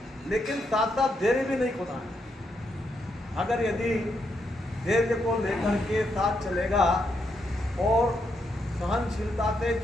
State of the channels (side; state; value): both; normal; correlation 0.80